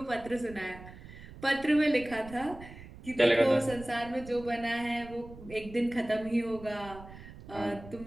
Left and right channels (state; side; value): noise; right; rumble, 16 dB below the sound